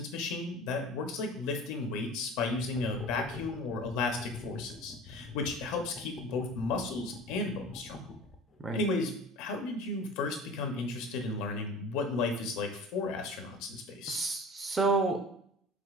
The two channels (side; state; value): both; normal; correlation 0.39